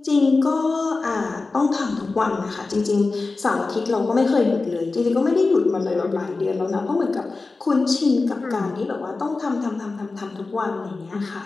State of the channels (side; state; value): right; quieter; 3.7 dB